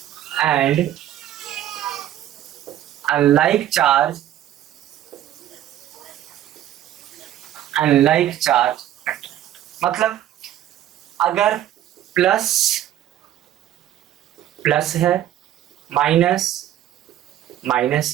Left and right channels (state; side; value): quieter; left; 12.2 dB